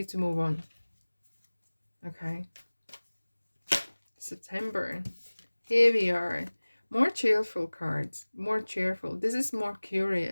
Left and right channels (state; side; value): inverted; both; correlation -1.00